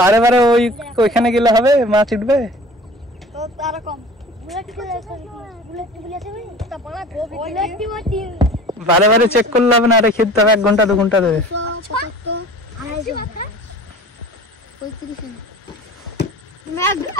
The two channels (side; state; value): both; normal; correlation 0.43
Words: বারে ওইখানে গেলে হবে মাছ উঠবে তো তার কম বুলেট আছে ভাই তা বড় বারে বারে চেক করলে হবে না রেখে দিতে হবে 1 ঘন্টা 2 ঘন্টা দেবে